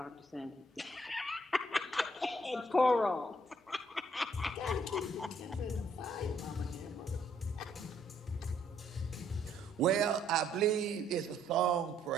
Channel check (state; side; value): normal; both; correlation 0.67